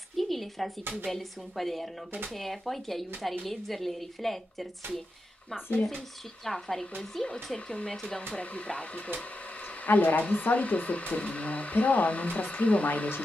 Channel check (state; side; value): normal; both; correlation 0.88